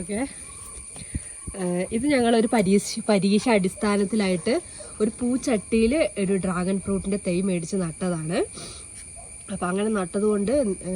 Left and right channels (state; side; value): identical; both; correlation 1.00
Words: ഇത് ഞങ്ങളൊരു പരീക്ഷ അടിസ്ഥാനത്തിലായിട്ട് ഒരു പൂച്ചട്ടിയിൽ ഒരു ഡ്രാഗൺ ഫ്രൂട്ടിൻ്റെ തൈ മേടിച്ച് നട്ടതാണ്. അപ്പം അങ്ങനെ നട്ടതുകൊണ്ട്